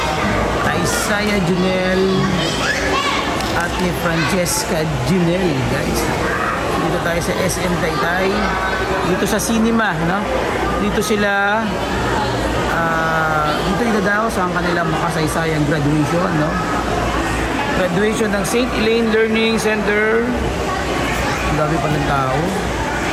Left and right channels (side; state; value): both; identical; correlation 1.00